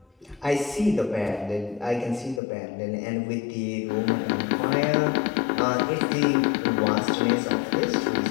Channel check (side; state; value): right; drops out; at 2.4 s